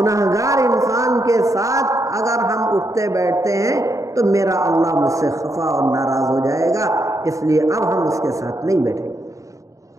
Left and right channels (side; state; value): left; late; 0.16 ms